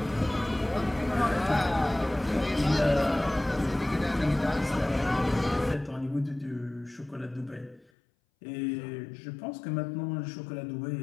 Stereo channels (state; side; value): drops out; right; at 7.9 s